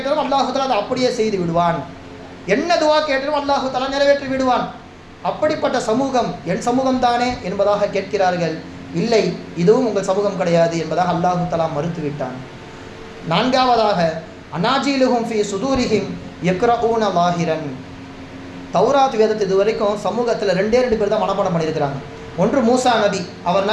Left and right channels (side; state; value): both; identical; correlation 1.00